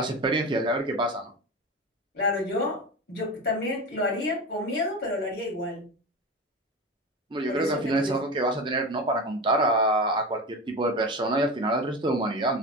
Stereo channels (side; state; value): both; normal; correlation 0.26